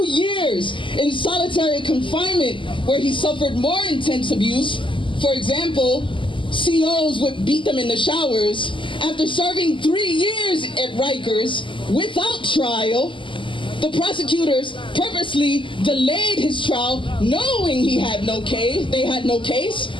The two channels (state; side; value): late; right; 0.25 ms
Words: years in solitary confinement where he suffered more intense abuse, for example, COs would beat them in the showers, after serving 3 years at Rikers without trial, the prosecutors purposely delayed his trial knowing he had no case, they had no case.